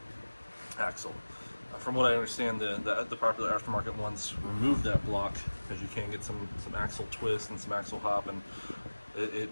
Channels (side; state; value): both; inverted; correlation -1.00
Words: axle. From what I understand, the popular aftermarket ones remove that block because you can get some axle twist and some axle hop, and it